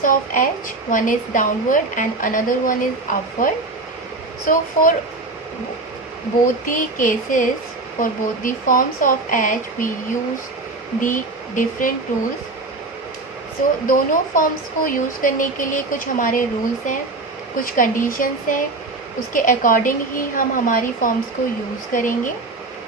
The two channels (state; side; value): quieter; left; 3.3 dB